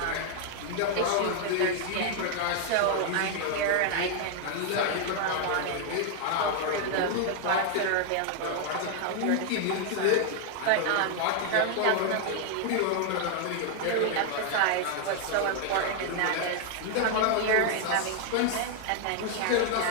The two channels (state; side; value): different; both; correlation 0.00